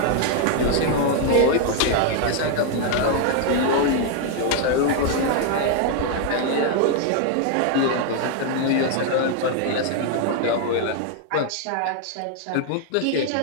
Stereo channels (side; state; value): both; different; correlation 0.00